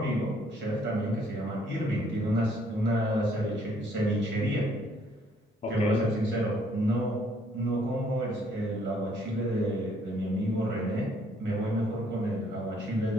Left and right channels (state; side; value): normal; both; correlation 0.65